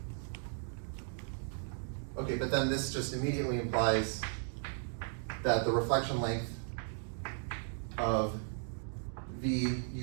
Okay, but then this just immediately implies that the reflection length of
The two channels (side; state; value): left; silent; 54 dB below the other